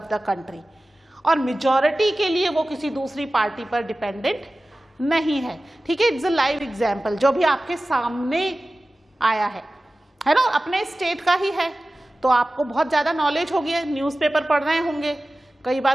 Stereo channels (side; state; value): both; normal; correlation 0.96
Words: the country और मेजॉरिटी के लिए वो किसी दूसरी पार्टी पर डिपेंडेंट नहीं है। ठीक है, इट्स अ लाइव एग्जाम्पल जो भी आपके सामने आया है ना, अपने स्टेट का ही है तो आपको बहुत ज़्यादा नॉलेज होगी, न्यूज़पेपर पढ़ रहे होंगे, कई